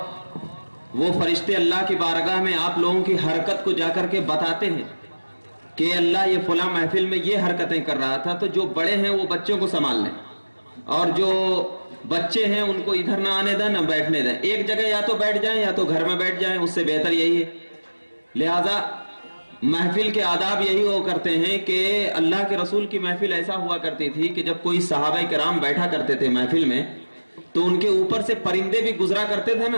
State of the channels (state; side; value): inverted; both; correlation -1.00